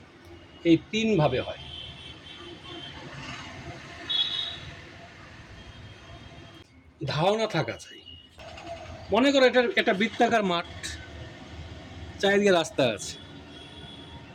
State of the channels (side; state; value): both; identical; correlation 1.00